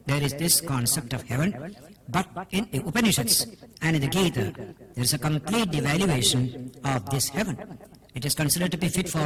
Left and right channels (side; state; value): both; identical; correlation 1.00